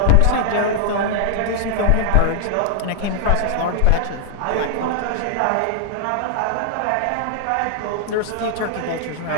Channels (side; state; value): both; different; correlation 0.00